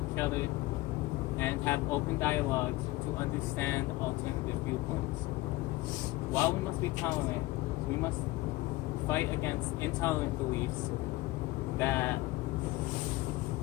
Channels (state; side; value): quieter; right; 19.4 dB